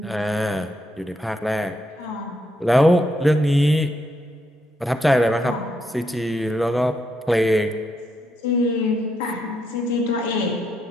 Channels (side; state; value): both; normal; correlation 0.79